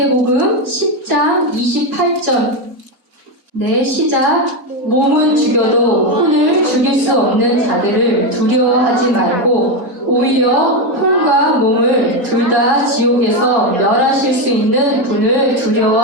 10장 28절. 네, 시작. 몸은 죽여도 혼을 죽일 수 없는 자들을 두려워하지 말고 오히려 혼과 몸을 둘 다 지옥에서 멸하실 수 있는 분을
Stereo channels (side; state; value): both; normal; correlation 0.09